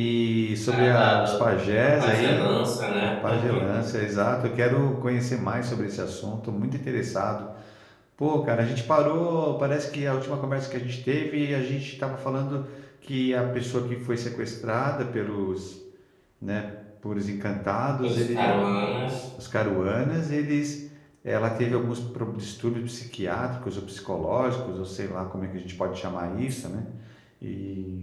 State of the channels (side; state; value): both; identical; correlation 1.00